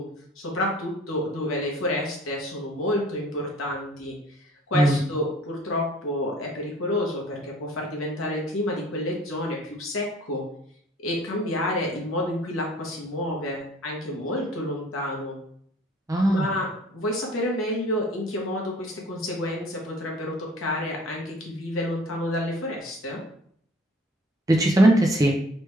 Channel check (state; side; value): normal; both; correlation 0.52